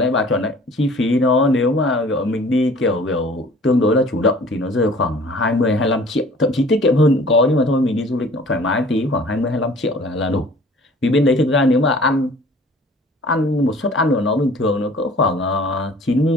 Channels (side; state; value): both; normal; correlation 0.49